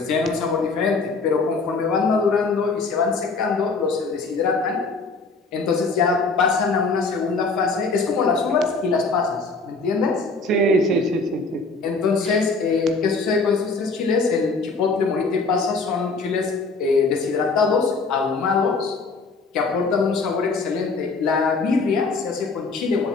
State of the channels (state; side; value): quieter; right; 3.9 dB